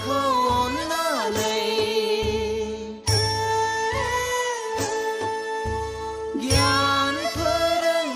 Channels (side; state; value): both; identical; correlation 1.00